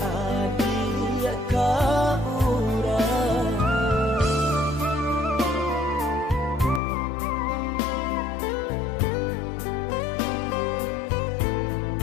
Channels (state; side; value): drops out; right; at 6.8 s